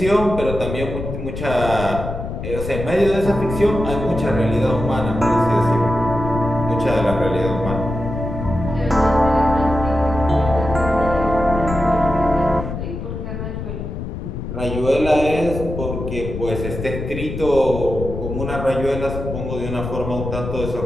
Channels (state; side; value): noise; left; rumble, 6 dB below the sound